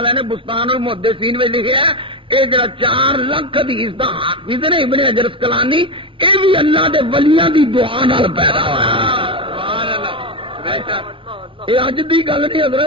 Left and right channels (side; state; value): left; late; 0.25 ms